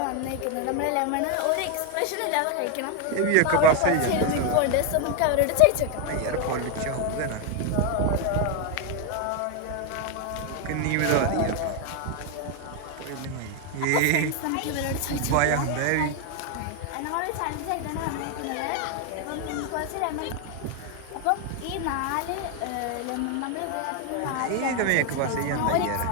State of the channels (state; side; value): different; both; correlation 0.01